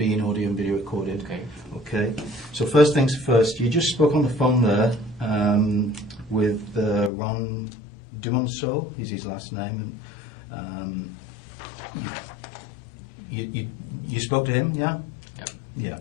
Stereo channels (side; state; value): right; drops out; at 7.1 s